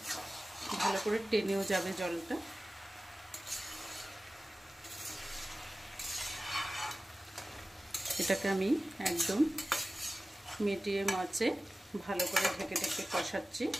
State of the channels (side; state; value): both; normal; correlation 0.96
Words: ভালো করে টেনেও যাবে জলটা। এটাকে আমি একদম মিডিয়াম আঁচে ভালো করে ঢেকে ঢেকে কষাচ্ছি।